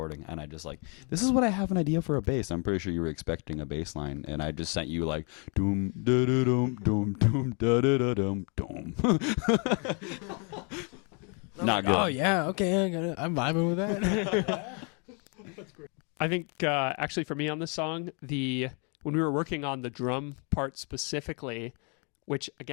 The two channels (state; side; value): quieter; right; 35.5 dB